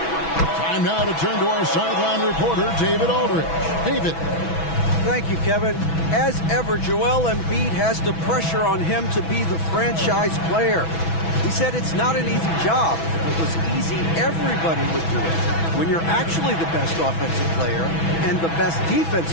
now to turn to our sideline reporter, David Aldridge. David. Thank you, Kevin. As ever, Joel Embiid has the pressure on him to be the franchise player. He said it's not an easy job. If it was easy, everybody would do it. When you're actually the best offensive player and the best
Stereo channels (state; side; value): late; right; 6.1 ms